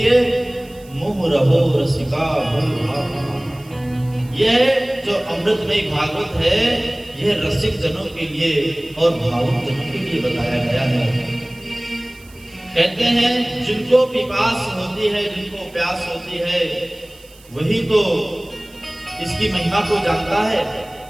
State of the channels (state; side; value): noise; right; hiss, 25 dB below the sound